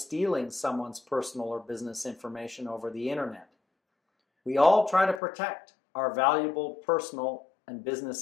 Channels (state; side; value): drops out; right; at 5.2 s